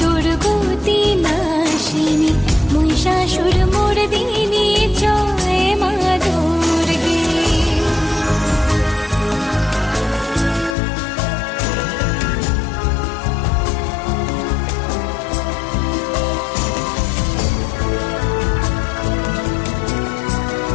দুর্গতি নাশিনী মহিষাসুর মর্দিনী জয় মা দুর্গে।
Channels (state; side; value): drops out; right; at 10.8 s